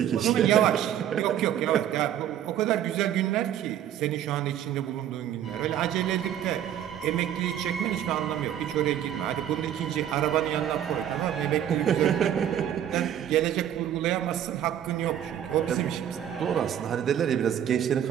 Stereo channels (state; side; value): quieter; left; 10.5 dB